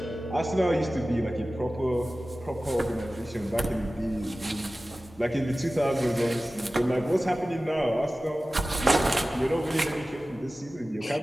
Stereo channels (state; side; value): normal; both; correlation 0.96